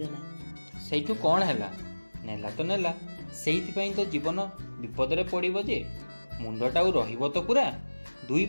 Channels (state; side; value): inverted; both; correlation -1.00